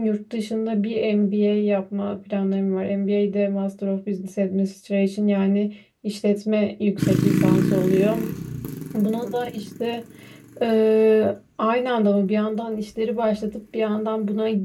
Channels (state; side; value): identical; both; correlation 1.00